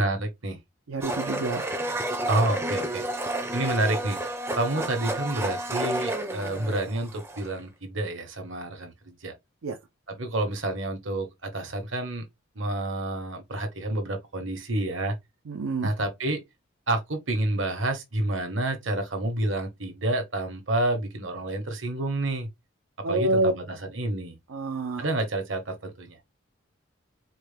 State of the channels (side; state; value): both; normal; correlation 0.31